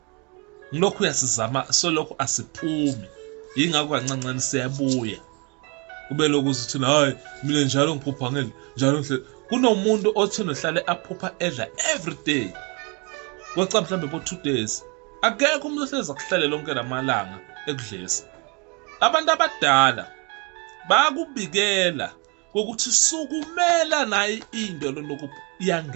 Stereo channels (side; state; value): left; quieter; 31.9 dB